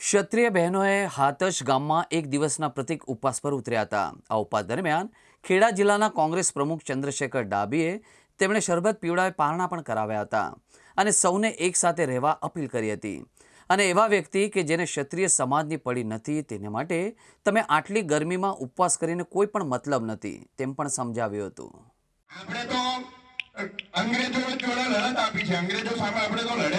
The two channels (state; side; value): identical; both; correlation 1.00